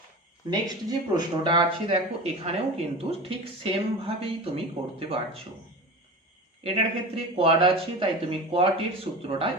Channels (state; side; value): normal; both; correlation 0.30